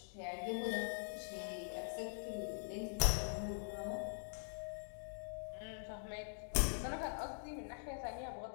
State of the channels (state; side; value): silent; right; digital silence